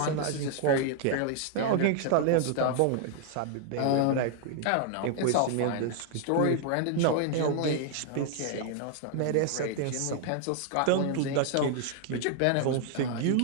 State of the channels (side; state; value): both; different; correlation 0.00